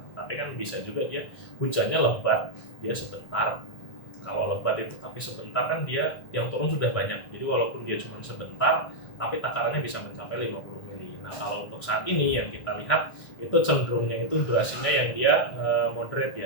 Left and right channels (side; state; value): right; late; 1.6 ms